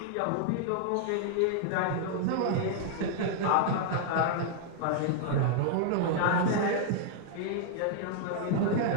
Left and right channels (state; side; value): different; both; correlation -0.01